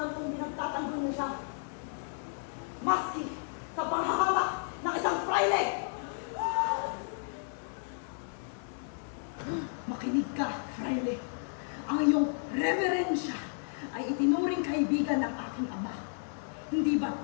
kong binagtatanggol niyo siya. Maski sa panghahamak ng isang fraile! Makinig ka, fraile. Ang iyong reverensya ay itinuring kaibigan ng aking ama. Hindi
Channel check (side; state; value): right; silent; digital silence